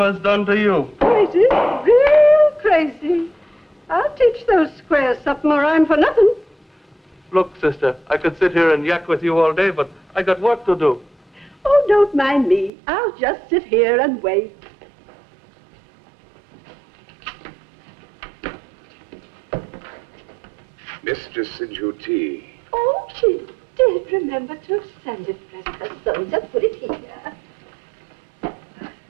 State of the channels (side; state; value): left; drops out; at 12.7 s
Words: done to you. Crazy, real crazy. I'll teach those squares something or I'm for nothing. Look, sister, I could sit here and yak with you all day, but I got work to do. Oh, don't mind me. I'll just sit here and wait. Mistress Sinjuti. Oh, she did remember to send it, bless her soul. Just put it here.